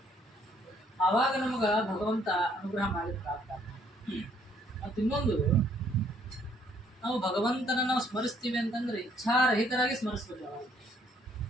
ಆವಾಗ ನಮಗ ಭಗವಂತ ಅನುಗ್ರಹ ಮಾಡಿದ್ರೆ ಆಗ್ತಾನೆ. ಮತ್ತು ಇನ್ನೊಂದು, ನಾವು ಭಗವಂತನ ನಾವು ಸ್ಮರಿಸ್ತೀವಿ ಅಂತಂದ್ರೆ ಇಚ್ಛಾರಹಿತರಾಗಿ ಸ್ಮರಿಸ್ಬೇಕು.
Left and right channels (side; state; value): both; normal; correlation 0.65